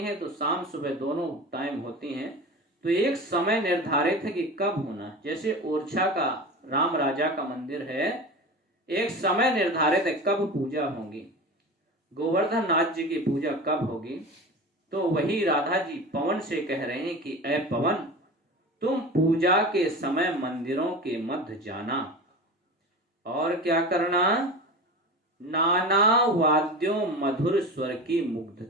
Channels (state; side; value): normal; both; correlation 0.31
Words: है तो शाम सुबह दोनों टाइम होती हैं, तो एक समय निर्धारित है कि कब होना है। जैसे ओरछा का राम राजा का मंदिर है, एक समय निर्धारित है कब पूजा होगी। गोवर्धन नाथ जी की पूजा कब होगी। तो वही राधा जी पवन से कह रहे हैं कि ऐ पवन, तुम पूजा के समय मंदिरों के मध्य जाना और क्या करना? नाना वाद्यों मधुर स्वर की